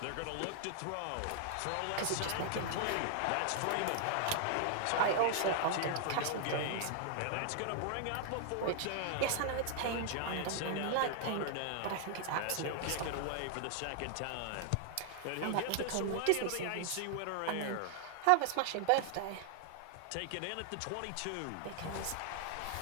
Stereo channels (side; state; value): both; different; correlation 0.00